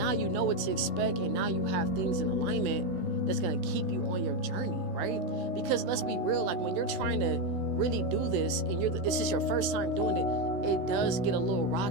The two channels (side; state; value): left; late; 16 ms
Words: you know what to expect, and now you have things in alignment that's going to keep you on your journey, right? Because let's be real, like, when you're trying to really do this and this is your first time doing it, it does get a little